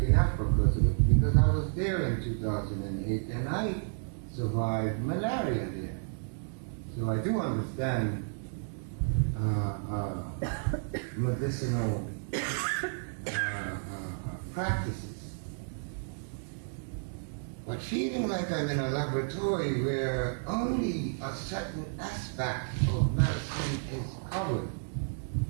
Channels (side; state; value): left; silent; digital silence